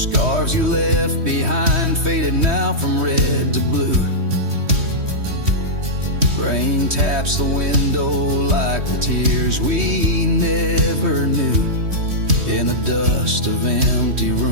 you left behind, faded now from red to blue. Rain taps the window like the tears we never knew. In the dust of empty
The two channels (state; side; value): late; left; 3.2 ms